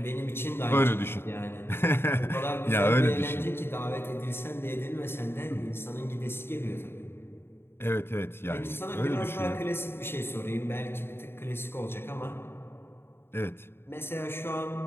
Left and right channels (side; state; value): right; late; 0.11 ms